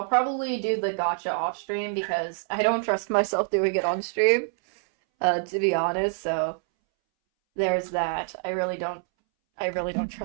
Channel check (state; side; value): silent; left; 61 dB below the other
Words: probably do the gacha off stream because I don't trust myself doing it on stream, to be honest. So there's that. I really don't